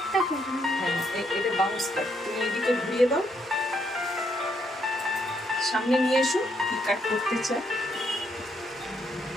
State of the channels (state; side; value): normal; both; correlation 0.74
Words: করবে না। হ্যাঁ, এটা বাউন্স কাট। তুমি এদিকে ঘুরিয়ে দাও, সামনে নিয়ে এসো, কি কাট করতে চাও।